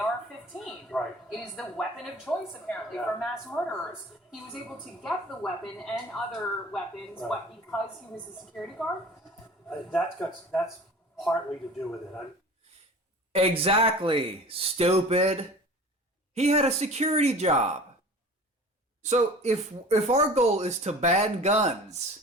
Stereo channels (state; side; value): normal; both; correlation 0.41